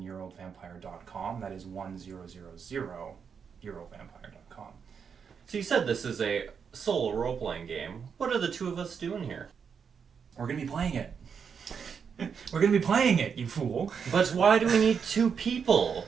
That is 1000yearoldvampire.com. So you said this is a solo role-playing game. What are the two of us doing here? We're going to be playing it. We're going to be playing it, you fool. But why do we need two people?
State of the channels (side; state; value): left; quieter; 6.6 dB